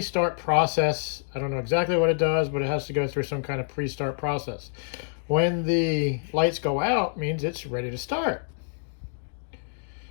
process. I don't know exactly what it does, but it has to go through some kind of pre-start process. When the lights go out, means it's ready to start.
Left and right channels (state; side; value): silent; right; digital silence